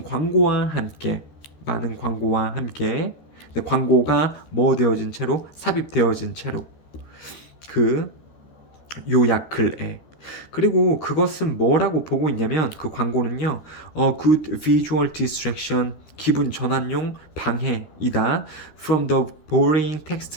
광고와 함께 광고가 뭐 되어진 채로 삽입되어진 채로 그 요약 글에. 그리고 그것은 뭐라고 보고 있냐면 그 광고는요 good visual distraction 기분 전환용 방해이다 from the boring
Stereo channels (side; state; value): right; late; 13 ms